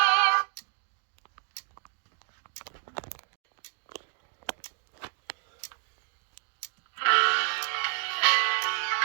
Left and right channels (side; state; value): left; silent; 58 dB below the other